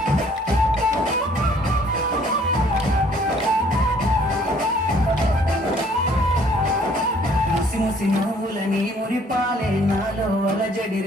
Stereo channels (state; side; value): normal; both; correlation 0.59